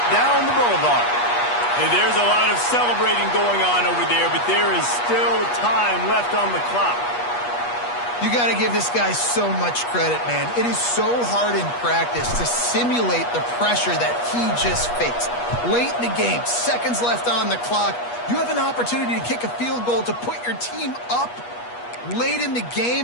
down the boulevard. And there's a lot of celebrating going on over there, but there is still time left on the clock. You got to give this guy so much credit, man. It is so hard in practice to simulate the pressure that he just faced. Late in the game, seconds left on the clock, you have an opportunity to kick a field goal to put your team up late in the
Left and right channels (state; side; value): late; right; 8.3 ms